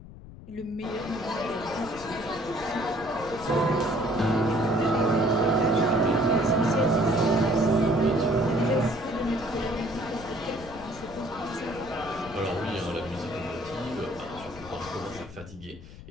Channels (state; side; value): noise; left; rumble, 16 dB below the sound